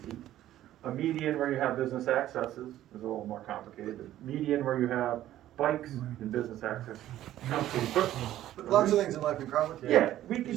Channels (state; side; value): quieter; left; 13.2 dB